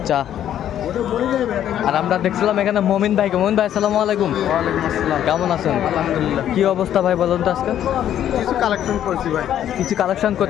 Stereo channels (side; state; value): right; quieter; 10.8 dB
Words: আর আমরা দেখছিলাম এখানে মমিন ভাইকে। মমিন ভাই আসসালামু আলাইকুম। ওয়ালাইকুম আসসালাম। কেমন আছেন? আলহামদুলিল্লাহ। কি অবস্থা ভাই বলুন তো আজকে? কিছু কালেকশন করছি ভাই। কিছু কালেকশন